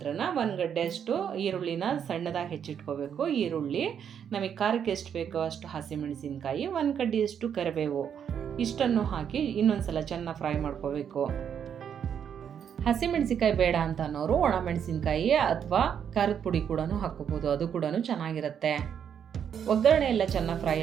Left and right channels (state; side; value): quieter; left; 8.2 dB